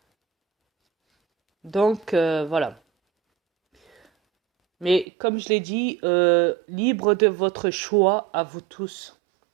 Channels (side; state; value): left; drops out; at 5.1 s